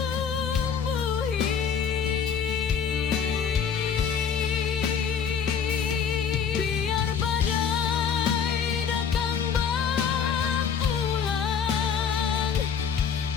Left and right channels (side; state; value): right; quieter; 7.1 dB